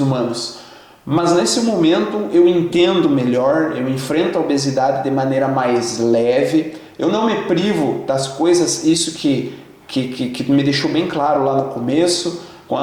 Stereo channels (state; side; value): identical; both; correlation 1.00